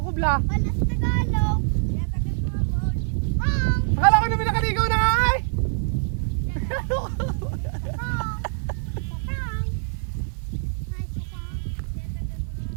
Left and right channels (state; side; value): silent; left; 58 dB below the other